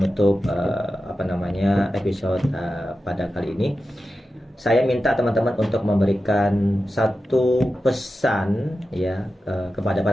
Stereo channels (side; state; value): both; normal; correlation 0.92